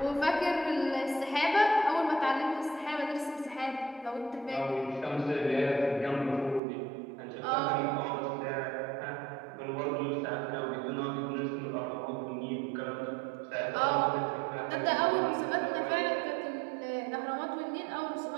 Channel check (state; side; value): drops out; left; at 6.6 s